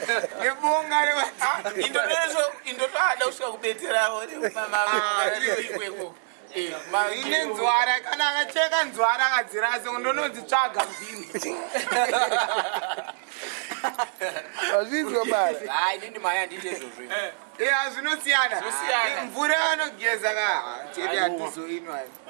nebonga indotoada kusvika kubetseravo ine nzwara kana akacheka nzwara akadzirase ndononzitsvaga mbini azvinzwa bala inini maya handiti izvozvo zvinosiyana mvura yanogeza chete hatizoinwa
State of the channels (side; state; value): left; silent; 61 dB below the other